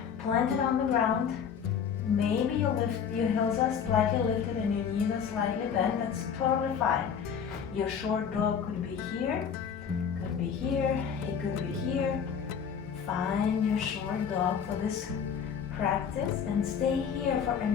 planted on the ground. Maybe your heels are slightly lifted and your knees are slightly bent. That's totally fine. Your short dog could be here, could be here, it could be here. Find your short dog for this practice and stay here for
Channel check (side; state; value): right; quieter; 7.3 dB